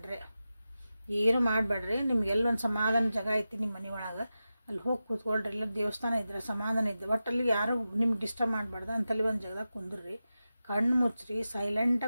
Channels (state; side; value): inverted; both; correlation -0.92